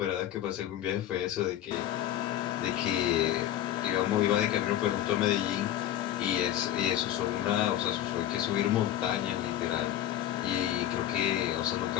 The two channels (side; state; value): right; quieter; 12.2 dB